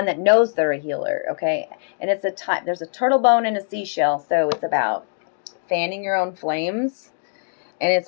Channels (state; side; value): silent; right; digital silence